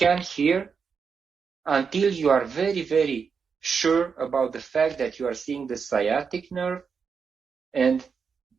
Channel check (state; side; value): quieter; left; 5.9 dB